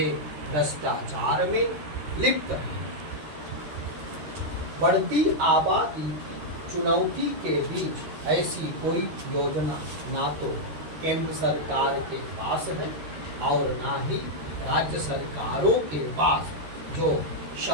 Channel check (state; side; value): late; left; 13 ms